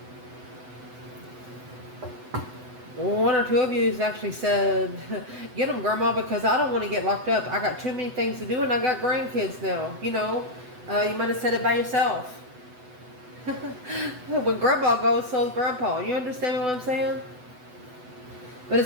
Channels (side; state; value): left; late; 8.0 ms